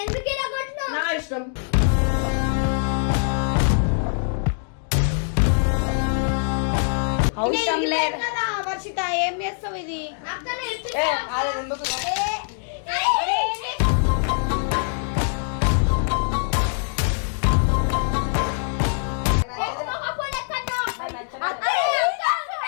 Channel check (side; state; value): right; silent; digital silence